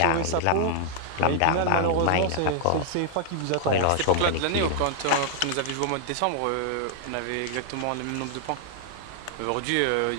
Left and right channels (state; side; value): different; both; correlation 0.00